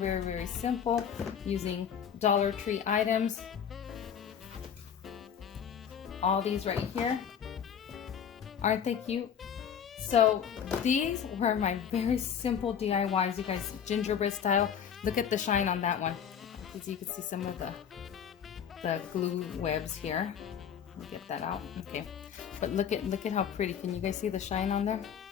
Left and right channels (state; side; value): quieter; right; 8.1 dB